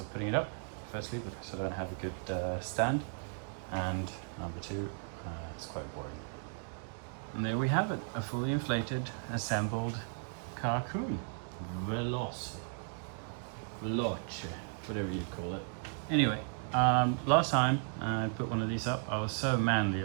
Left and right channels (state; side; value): silent; left; 54 dB below the other